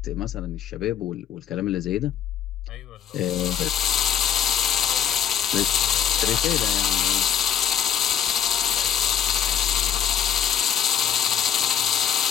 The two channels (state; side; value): quieter; right; 9.4 dB